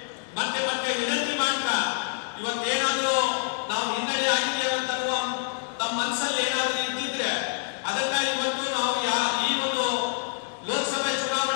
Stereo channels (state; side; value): silent; right; 60 dB below the other